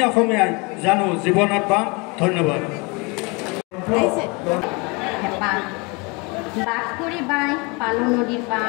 অসমীয়াই জানো জীৱনত পাম ধন্যবাদ বাস কৰি বাই পালো নদীৰ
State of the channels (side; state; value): right; quieter; 28.8 dB